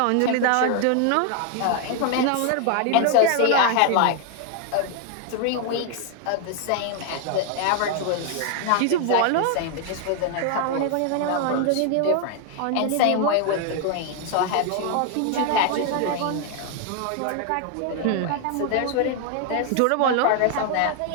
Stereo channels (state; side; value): different; both; correlation 0.00